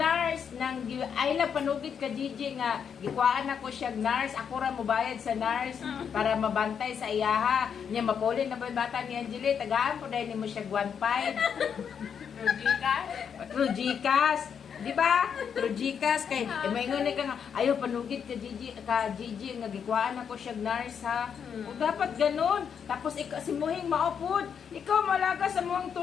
ay lang panugit ka Gigi, nga, gikuhaan ako siya nurse, ako ra mubayad sa nurse, para mabantay sa iyaha. Niya, mapulin na ba yung bata ni Angela, tagaan po dahil mo siya 1.5. True Gcash. Di ba? True Gcash kay maingon ka nga ayo panugid ka Gigi nga gikwaan ako siya nurse ha. O dapat ganun. Tapos ikaw si Muhing maupod. Ikaw malaga sa muang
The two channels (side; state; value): right; quieter; 7.4 dB